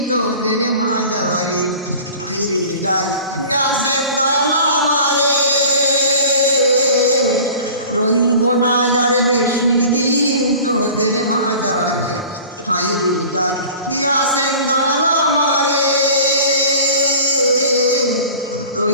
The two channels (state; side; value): inverted; both; correlation -0.41